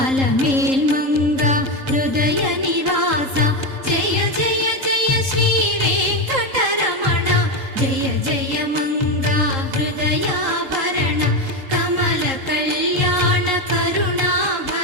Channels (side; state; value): left; late; 3.8 ms